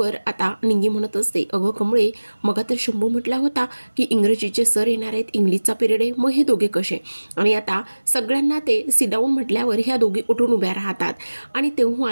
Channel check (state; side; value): inverted; both; correlation -1.00